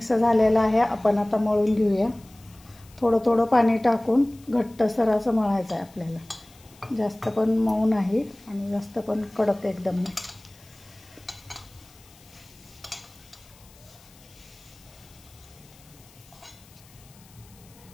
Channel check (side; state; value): left; noise; hiss, 26 dB below the sound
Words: झालेलं आहे. आपण आता मळून घेऊया. थोडं पाणी टाकून घट्टसर असं मळायचं आहे आपल्याला. जास्त पण मऊ नाही आणि जास्त पण कडक एकदम नाही.